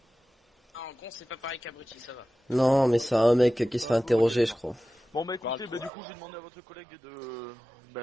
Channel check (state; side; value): drops out; left; at 5.9 s